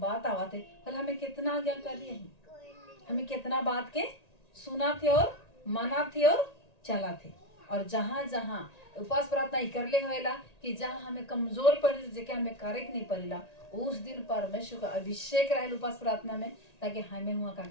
आवा थे, हमें कितना आज्ञाकारी है, हमें कितना बात के सुना थे और माना थे और चला थे। और जहां जहां उपवास प्रार्थना कर ले होएला कि जहां हमें कमजोर पड़े जेके हमें करे नहीं पड़ेला, उस दिन परमेश्वर का अभिषेक रहे उपवास प्रार्थना में, ताकि हमें हुआ का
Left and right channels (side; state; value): right; late; 1.9 ms